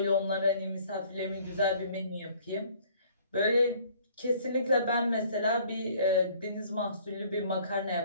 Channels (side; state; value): both; inverted; correlation -0.57